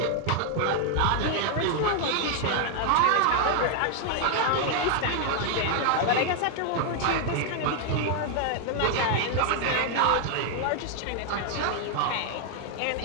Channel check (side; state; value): both; different; correlation 0.00